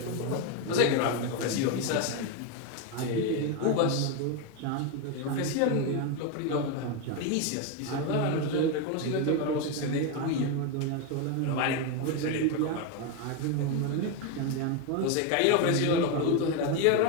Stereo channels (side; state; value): both; different; correlation 0.02